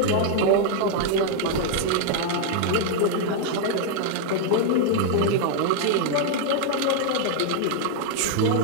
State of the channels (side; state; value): both; different; correlation 0.00